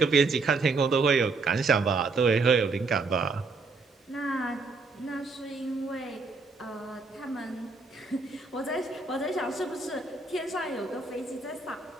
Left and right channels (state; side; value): quieter; left; 3.9 dB